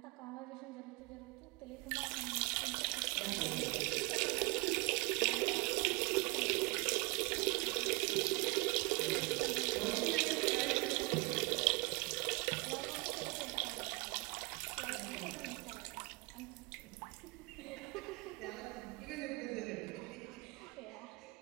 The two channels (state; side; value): quieter; left; 27.5 dB